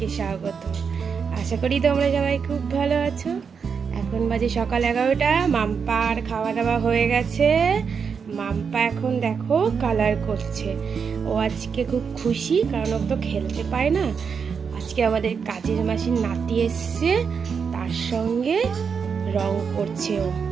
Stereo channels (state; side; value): quieter; left; 6.2 dB